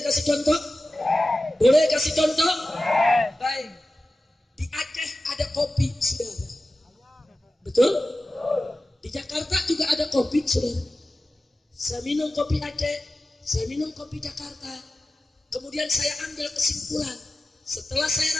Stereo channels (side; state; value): both; normal; correlation 0.94